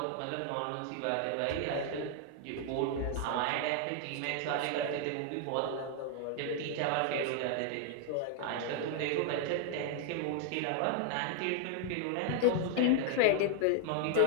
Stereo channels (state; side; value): different; both; correlation 0.00